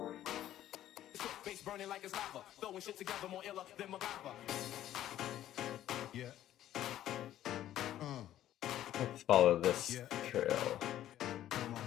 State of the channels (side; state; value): right; quieter; 12.5 dB